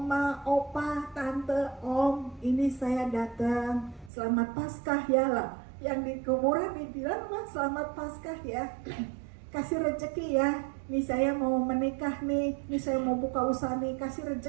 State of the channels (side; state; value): left; drops out; at 4.1 s